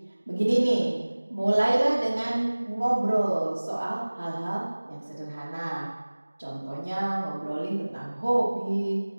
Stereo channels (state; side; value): inverted; both; correlation -1.00